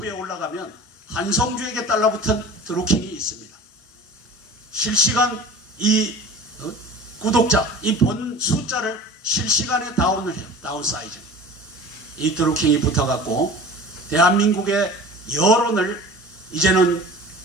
올라가면 한성주에게 달라붙은 드루킹이 있습니다. 실시간 이 구독자, 이 본 숫자를 실시간에 다운을 해요. 다운 사이즈. 이 드루킹이 붙어갖고 대한민국의 여론을 이제는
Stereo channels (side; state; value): both; normal; correlation 0.39